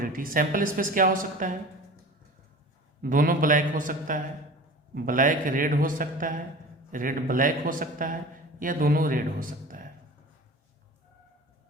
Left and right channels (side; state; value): both; normal; correlation 0.38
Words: सैंपल स्पेस क्या हो सकता है, दोनों ब्लैक हो सकता है, ब्लैक रेड हो सकता है, रेड ब्लैक हो सकता है, या दोनों रेड हो सकता है।